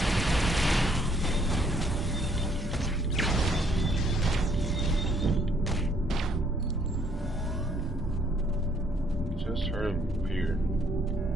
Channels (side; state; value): both; normal; correlation 0.66